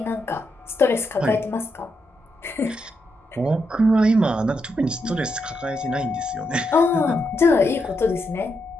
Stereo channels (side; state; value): both; normal; correlation 0.82